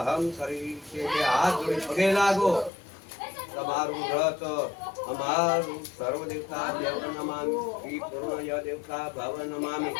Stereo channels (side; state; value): right; drops out; at 2.7 s